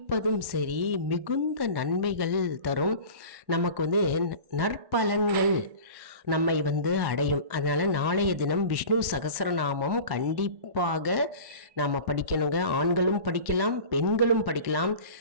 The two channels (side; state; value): left; late; 1.1 ms